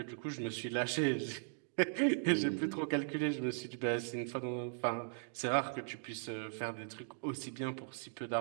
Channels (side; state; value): left; silent; digital silence